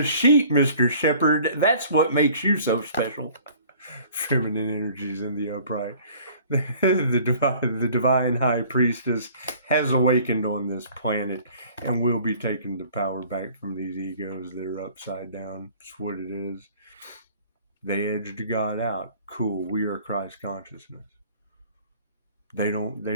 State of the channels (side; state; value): both; inverted; correlation -0.52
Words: sheep, Mr. Shepherd. That's what makes you so special. Feminine energies in the upright. The divine high priestess has awakened on this planet and will be taking the power back from these egos that are upside down. That's what it is. They edged God out. Cool. We are Christ consciousness. They